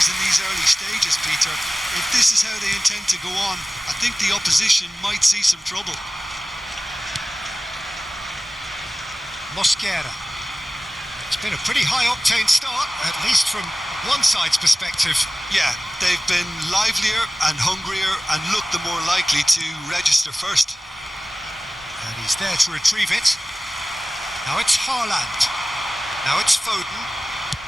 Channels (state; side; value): normal; both; correlation 0.97